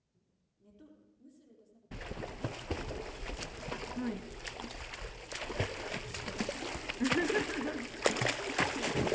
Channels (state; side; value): identical; both; correlation 1.00